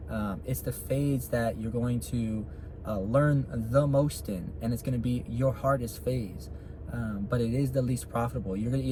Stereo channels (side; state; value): both; identical; correlation 1.00